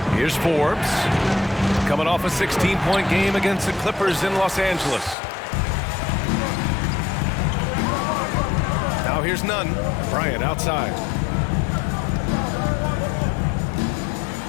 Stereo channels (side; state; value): right; drops out; at 5.2 s